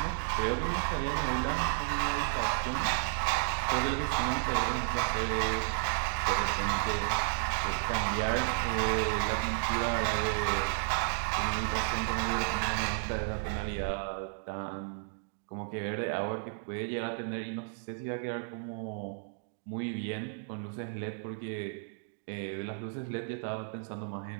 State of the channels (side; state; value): left; silent; 56 dB below the other